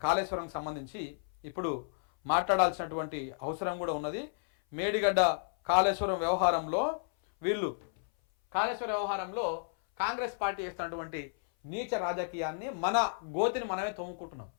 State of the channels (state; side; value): silent; right; 56 dB below the other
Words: కాళేశ్వరంకి సంబంధించి ఇప్పుడు మాట్లాడాల్సినటువంటి అవసరం కూడా ఉన్నది. మేడిగడ్డ కాళేశ్వరం వ్యవహారంలో కాంగ్రెస్ పార్టీ చేస్తున్నటువంటి నీచ రాజకీయాన్ని మన గోతిని మనమే తోముకుంటున్నాం.